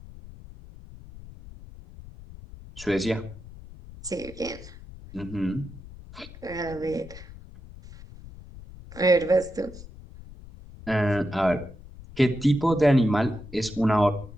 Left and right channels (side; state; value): left; noise; rumble, 17 dB below the sound